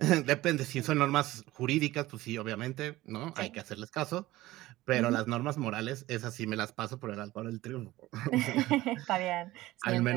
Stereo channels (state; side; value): quieter; left; 17.4 dB